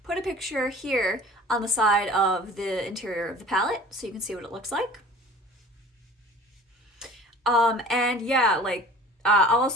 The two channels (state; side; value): normal; both; correlation 0.44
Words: put a picture here on the side of the interior of the palette so you can see what it looks like. And yeah, I'll